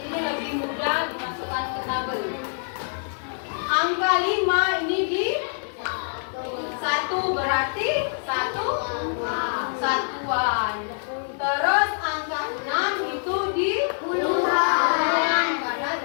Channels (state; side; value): silent; right; digital silence